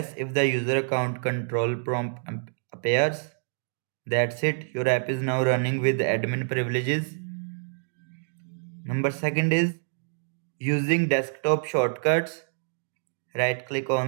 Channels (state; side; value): silent; left; digital silence